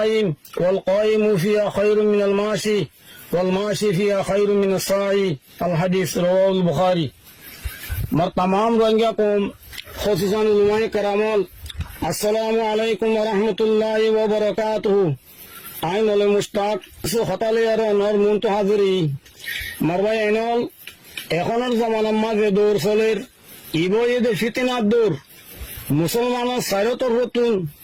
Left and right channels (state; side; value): identical; both; correlation 1.00